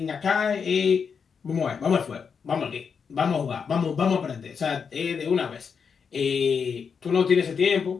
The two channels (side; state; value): right; quieter; 6.2 dB